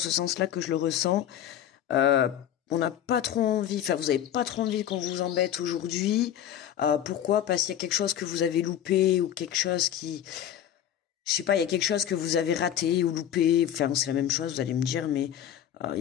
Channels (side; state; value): right; quieter; 10.4 dB